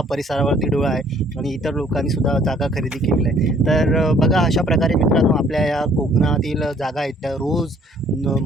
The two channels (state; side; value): normal; both; correlation 0.60